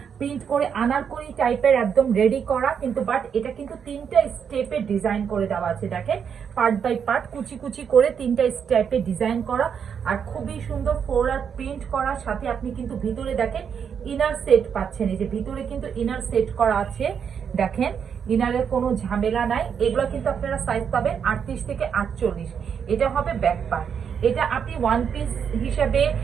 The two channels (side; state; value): left; quieter; 7.3 dB